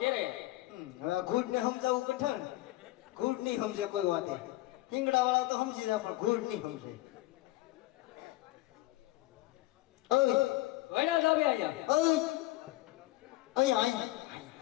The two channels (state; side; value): quieter; right; 18.5 dB